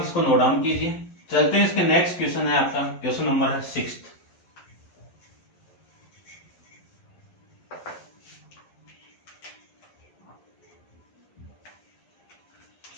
नोट डाउन कीजिए। चलते हैं, इसके नेक्स्ट क्वेश्चन है आपका, क्वेश्चन नंबर है 6th।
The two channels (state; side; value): late; right; 11 ms